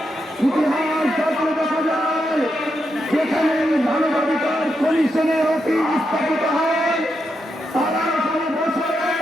ইতিহাস যাত্রা দেখা যায় যেখানে মানবাধিকার কমিশনের অফিস স্থাপিত হয় তারা কোনো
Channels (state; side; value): normal; both; correlation 0.84